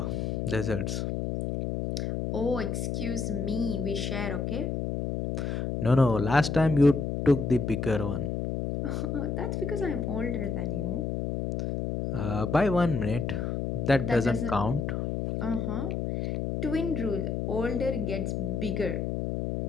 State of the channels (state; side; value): noise; left; hum, 2 dB below the sound